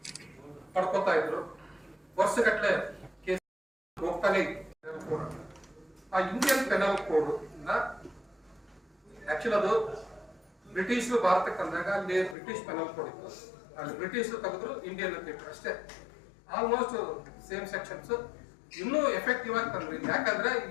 ಪಡ್ಕೋತಾ ಇದ್ರು. ವರ್ಷಗಟ್ಟಲೆ ಕೇಸ್ ಹೋಗ್ತಾನೆ ಇತ್ತು. ಆ ಇಂಡಿಯನ್ ಪೆನಲ್ ಕೋಡ್ ಆಕ್ಚುಲಿ ಅದು ಬ್ರಿಟಿಷರು ಭಾರತಕ್ಕೆ ಅಂದಾಗ ಅಲ್ಲಿ ಬ್ರಿಟಿಷ್ ಪೆನಲ್ ಕೋಡ್ ಇತ್ತು. ಅಲ್ಲಿ ಬ್ರಿಟಿಷರು ತೆಗೆದ್ರು, ಇಂಡಿಯನ್ ಅಂತ ಇಟ್ಟರು ಅಷ್ಟೇ. ಆಲ್ಮೋಸ್ಟ್ ಸೇಮ್ ಸೆಕ್ಷನ್ಸ್ ಇನ್ನೂ ಎಫೆಕ್ಟಿವ್ ಆಗಿ ತಂದ್ರಿ. ಯಾಕಂದ್ರೆ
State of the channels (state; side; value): drops out; right; at 12.4 s